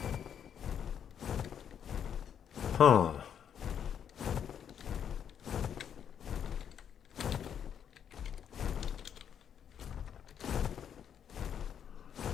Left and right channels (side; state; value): right; quieter; 8.5 dB